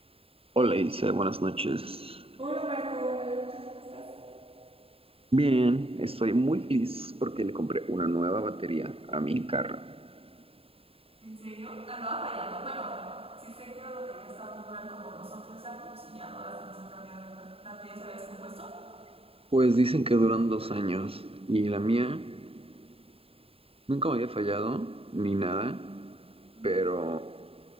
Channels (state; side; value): late; left; 0.27 ms